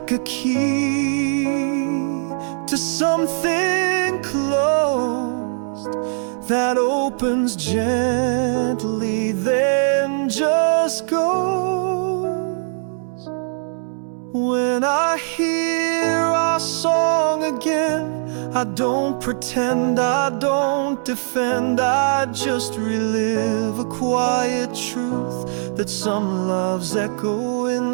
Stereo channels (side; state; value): left; silent; 63 dB below the other